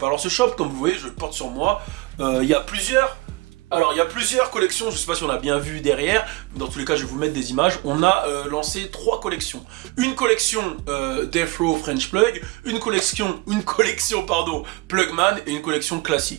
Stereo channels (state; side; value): quieter; left; 22.1 dB